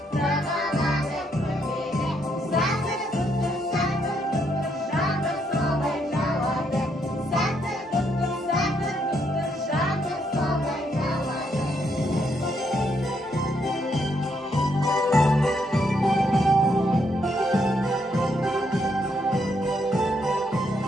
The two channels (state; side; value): normal; both; correlation 0.75